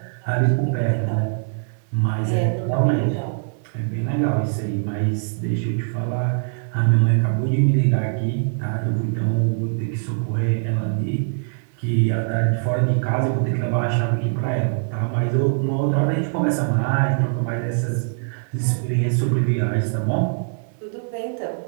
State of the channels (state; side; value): silent; left; 57 dB below the other